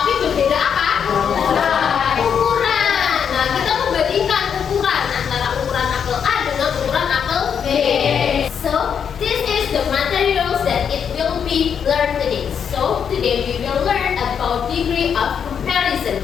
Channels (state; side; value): quieter; right; 7.5 dB